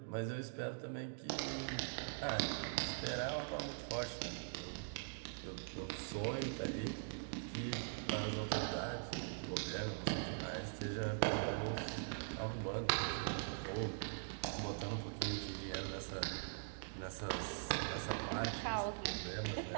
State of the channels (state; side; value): silent; left; digital silence